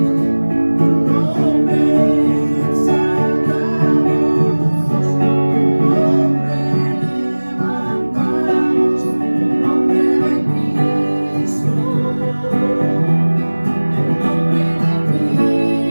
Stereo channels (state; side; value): inverted; both; correlation -1.00